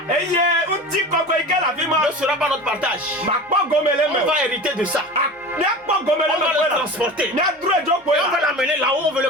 ne sera pas notre partage. On va hériter de ça. On va le transporter. Et on va l'amener là où on veut le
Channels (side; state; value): both; normal; correlation 0.33